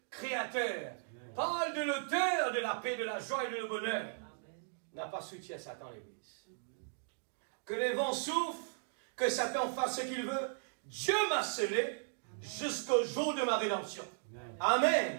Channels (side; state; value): left; silent; digital silence